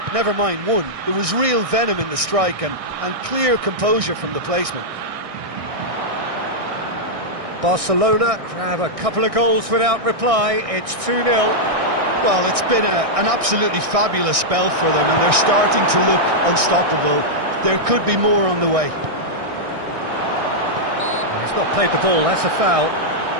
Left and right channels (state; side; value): late; left; 1.6 ms